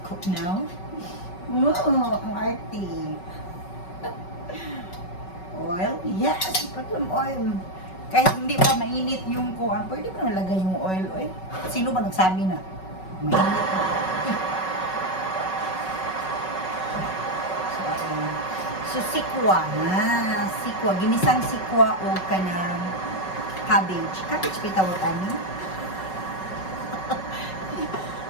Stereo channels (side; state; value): right; late; 5.3 ms